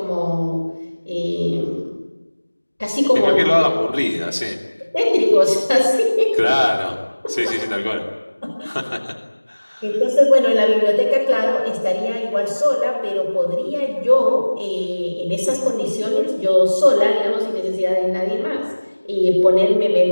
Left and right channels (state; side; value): inverted; both; correlation -1.00